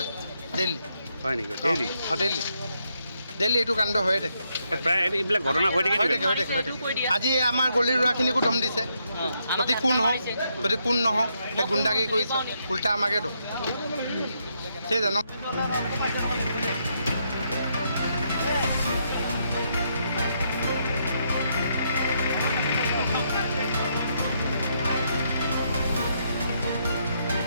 ডেইলি হয় নেকি ডেইলি ডেইলি এইটো কাণ্ড হৈয়ে থাকে প্ৰায় এইবিলাক ঘটনা হৈ থাকে আজি আমাৰ গলিৰ ল'ৰাখিনিকো দম দিছে যদি কোন নহওক সেই গুণ্ডাগিৰি কৰিছে উল্টা আমাকে দম সেই জানো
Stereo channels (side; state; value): both; inverted; correlation -0.77